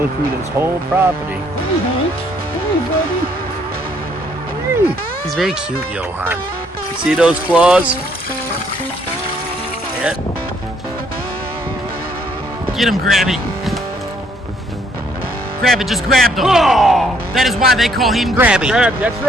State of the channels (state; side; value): normal; both; correlation 0.67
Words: through this whole property. Hey, Hank. Hey, buddy. Hey. He's very cute, Johan. You see those claws? Yeah. Get him, Grabby. Grab it, just grab them. Oh! That is why they call him Grabby. Grab, that's